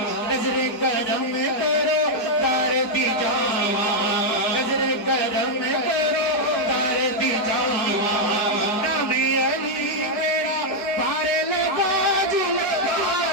نظر کرم کرو تار دی جاوا نظر کرم کرو تار دی جاوا نام علی میرا پارے لگا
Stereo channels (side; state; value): right; late; 4.7 ms